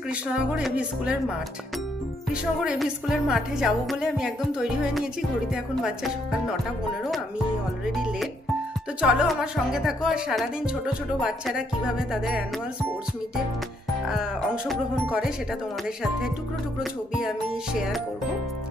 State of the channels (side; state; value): both; normal; correlation 0.73